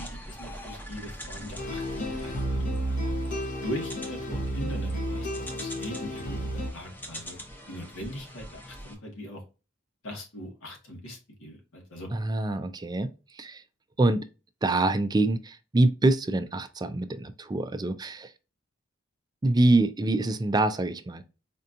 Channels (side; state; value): both; normal; correlation 0.78